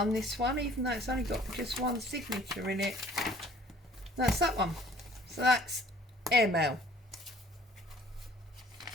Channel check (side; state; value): both; normal; correlation 0.54